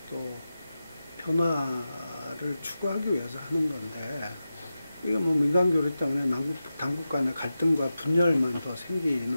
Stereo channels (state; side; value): inverted; both; correlation -0.92